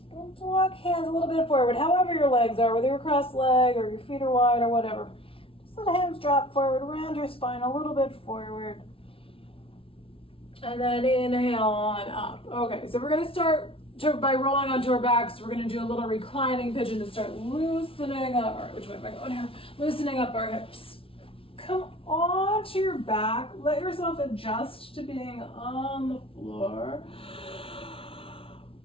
Walk hands a little bit forward, however your legs are, whether you're cross-legged or your feet are wide or whatever. Just let the hands drop forward, around your spine a little bit forward. And then inhale on up. Okay, so we're going to start by rolling onto our backs. We're going to do a little reclining pigeon to start loosening up. All right, which way am I going here? Loosening up our hips. Come onto your back. Let yourself adjust to being on the floor.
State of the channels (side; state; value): right; late; 0.26 ms